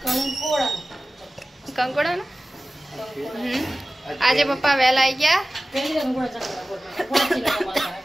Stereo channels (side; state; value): both; normal; correlation 0.96